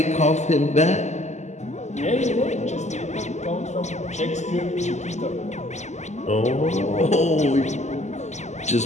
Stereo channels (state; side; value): late; right; 0.33 ms